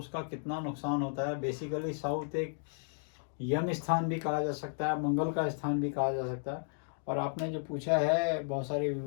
कितना नुकसान होता है। बेसिकली साउथ एक यम स्थान भी कहा जा सकता है, मंगल का स्थान भी कहा जा सकता है। और आपने जो पूछा है बहुत सारे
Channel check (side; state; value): right; silent; digital silence